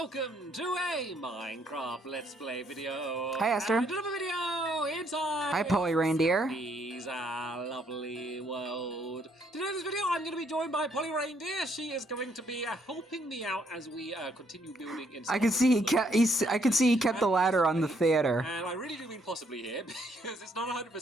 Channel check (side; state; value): both; normal; correlation 0.70